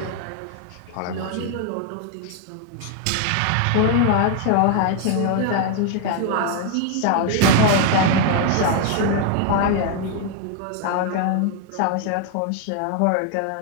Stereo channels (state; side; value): different; both; correlation 0.00